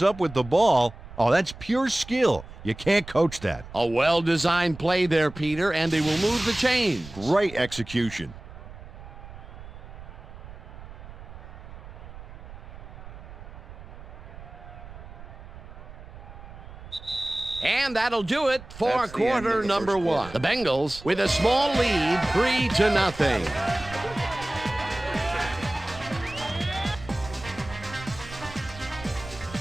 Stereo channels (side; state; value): right; noise; rumble, 15 dB below the sound